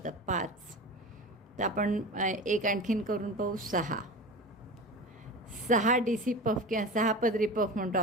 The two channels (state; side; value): normal; both; correlation 0.30